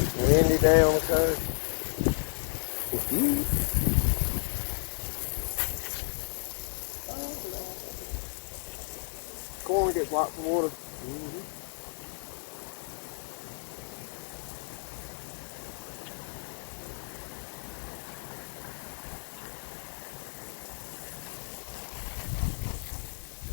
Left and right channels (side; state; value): right; silent; digital silence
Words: windy day on the coast. Corn gets lots of water.